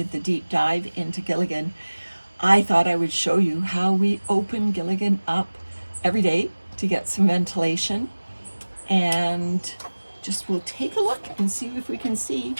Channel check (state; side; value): inverted; both; correlation -1.00